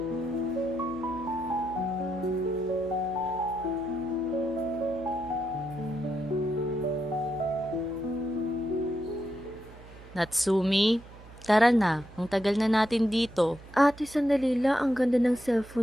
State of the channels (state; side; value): noise; right; hum, 19 dB below the sound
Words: Natsumi, tara na. Ang tagal na natin dito. Ate, sandali lang. Ang ganda ng